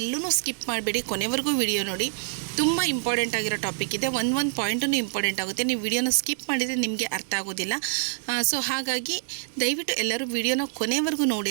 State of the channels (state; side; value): silent; left; 61 dB below the other